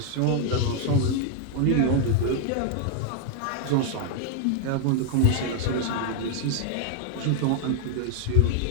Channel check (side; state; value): both; different; correlation 0.00